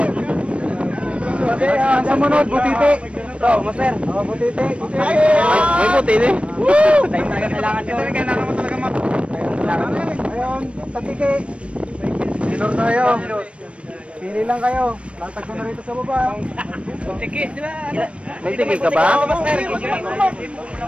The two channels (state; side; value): late; left; 0.061 ms